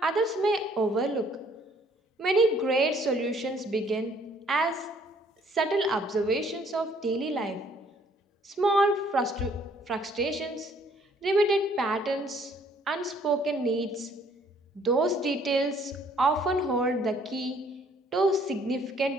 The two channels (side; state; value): both; normal; correlation 0.62